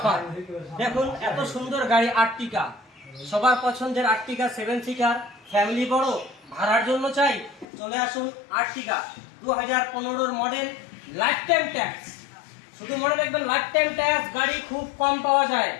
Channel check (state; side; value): drops out; right; at 7.7 s